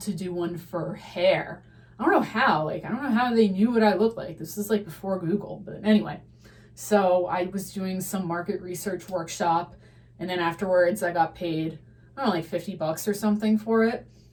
to do one for hair. I don't know how. Like, I don't know how they knew what I looked like. This is like before Google. But anyway, so I was doing some market research workshop. And then afterwards, I got paid, I don't know, like $50 or something for it.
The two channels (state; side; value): identical; both; correlation 1.00